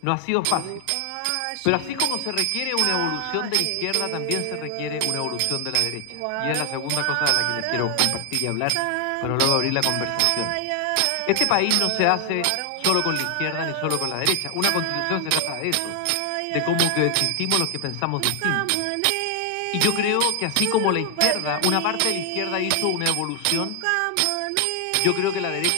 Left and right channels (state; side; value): different; both; correlation 0.00